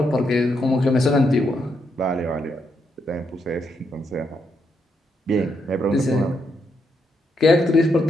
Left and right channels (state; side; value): normal; both; correlation 0.79